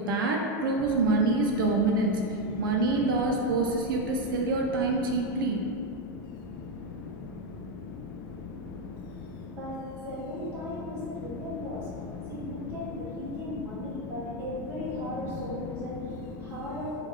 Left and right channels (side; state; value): both; normal; correlation 0.06